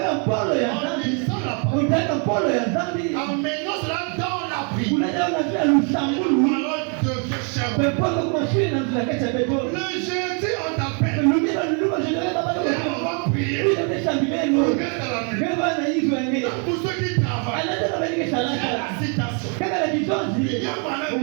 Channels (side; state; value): left; quieter; 38.7 dB